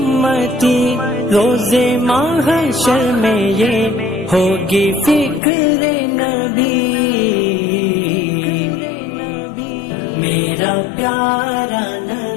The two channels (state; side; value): drops out; right; at 5.4 s